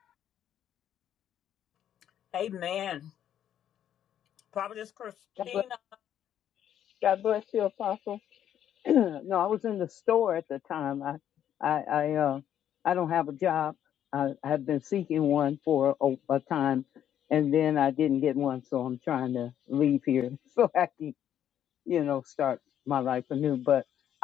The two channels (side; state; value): right; quieter; 10.3 dB